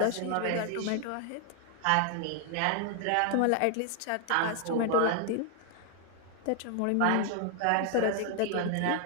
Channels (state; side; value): different; both; correlation 0.00